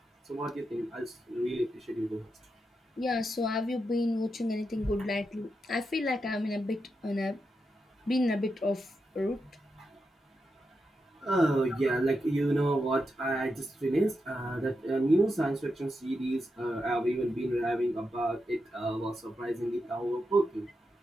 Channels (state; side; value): normal; both; correlation 0.86